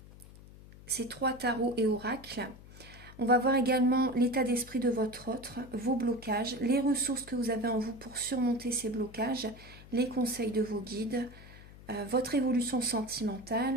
ces 3 tarots et oracles. On va voir également l'état d'esprit de votre autre, vos blocages, les ressources que vous avez en vous pour surmonter ces blocages, les conseils de vos guides, votre évolution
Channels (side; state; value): left; noise; hum, 19 dB below the sound